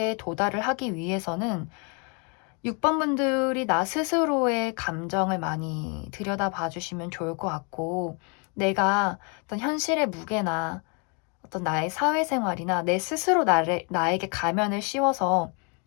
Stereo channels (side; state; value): right; quieter; 35.1 dB